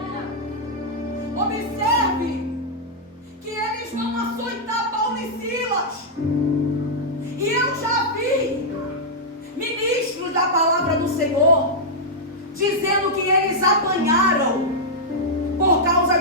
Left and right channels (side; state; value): both; normal; correlation -0.07